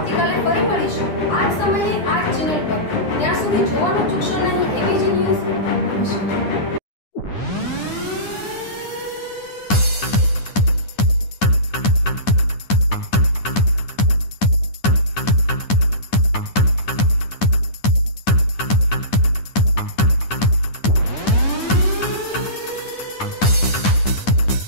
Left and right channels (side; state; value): right; late; 9.9 ms